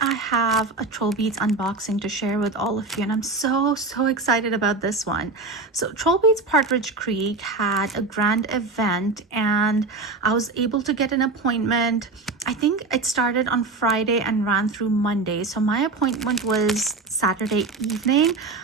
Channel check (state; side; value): quieter; left; 3.8 dB